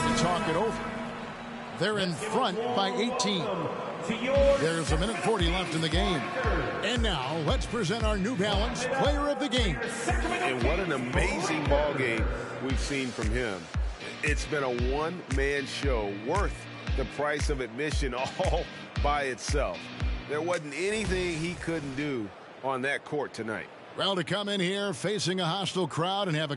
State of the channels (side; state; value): both; identical; correlation 1.00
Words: to talk it over. They're in front by 18. There's 1:40 left in the game. And now, let's present our New Balance Player of the Game. And what an amazing ball game we've seen from him. It's been a one-man show worth the price of admission all by itself. There wasn't anything he couldn't do on that court tonight. Well, to come in here facing a hostile crowd and have a